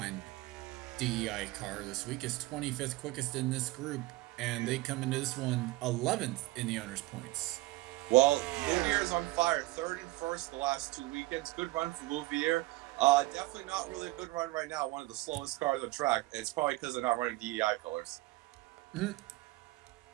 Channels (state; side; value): quieter; left; 19.6 dB